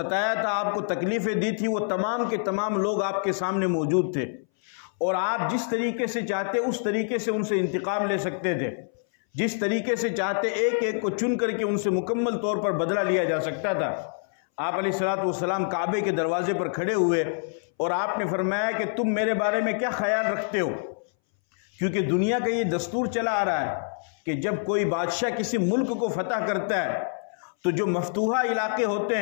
تھا، آپ کو تکلیفیں دی تھی، وہ تمام کے تمام لوگ آپ کے سامنے موجود تھے، اور آپ جس طریقے سے چاہتے اس طریقے سے ان سے انتقام لے سکتے تھے، جس طریقے سے چاہتے ایک ایک کو چن کر کے ان سے مکمل طور پر بدلہ لیا جا سکتا تھا۔ آپ علیہ الصلوۃ والسلام کعبے کے دروازے پر کھڑے ہوئے اور آپ نے فرمایا کہ تم میرے بارے میں کیا خیال رکھتے ہو، کیونکہ دنیا کا یہ دستور چلا آ رہا ہے کہ جب کوئی بادشاہ کسی ملک کو فتح کرتا ہے تو جو مفتوحہ علاقے ہوتے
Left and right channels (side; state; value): right; silent; 61 dB below the other